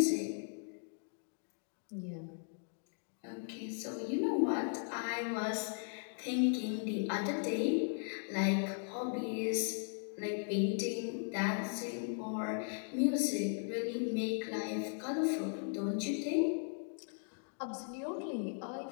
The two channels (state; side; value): silent; right; 53 dB below the other